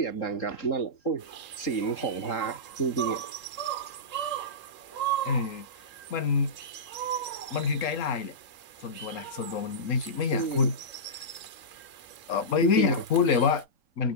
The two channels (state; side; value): late; right; 3.8 ms